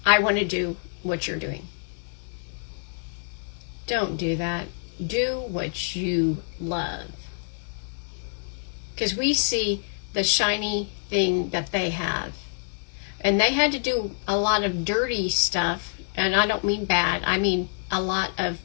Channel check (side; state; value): right; silent; digital silence